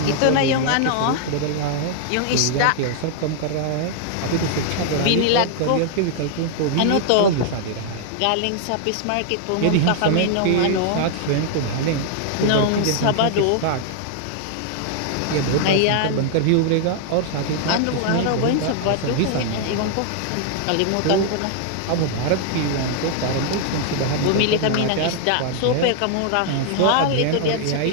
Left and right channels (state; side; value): different; both; correlation 0.00